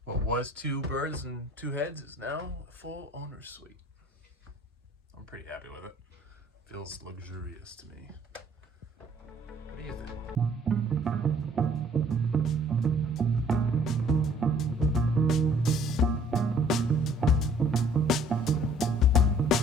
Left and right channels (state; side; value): normal; both; correlation 0.58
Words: what was 2 berths and 2 heads is now a full owner's suite. I'm pretty happy with it. Feels luxurious to me. What do you think?